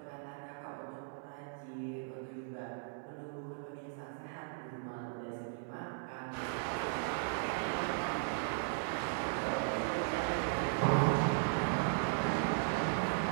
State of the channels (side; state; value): left; silent; digital silence